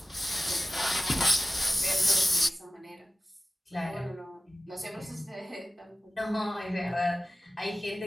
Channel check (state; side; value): normal; both; correlation 0.96